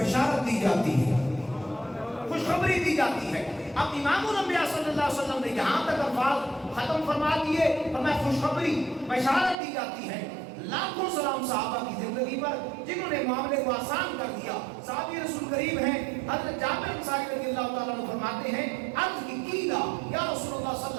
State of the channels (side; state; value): left; drops out; at 9.6 s